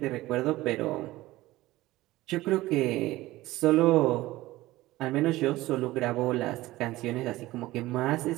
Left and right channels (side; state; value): left; quieter; 17.7 dB